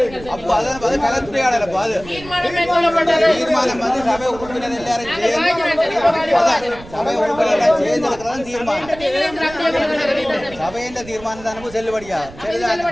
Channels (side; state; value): right; noise; rumble, 18 dB below the sound